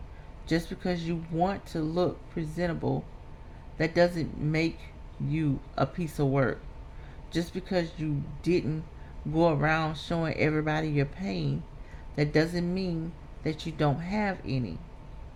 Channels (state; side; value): identical; both; correlation 1.00